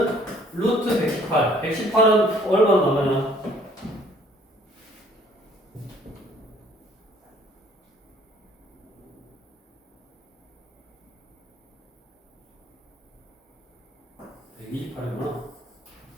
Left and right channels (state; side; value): normal; both; correlation 0.58